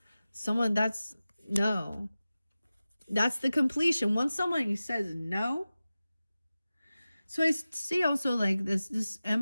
No. That's the completion. Once somebody says no. So I see also like this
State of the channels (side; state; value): both; inverted; correlation -0.96